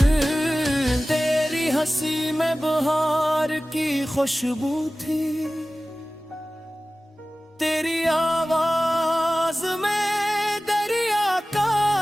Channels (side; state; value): both; normal; correlation 0.97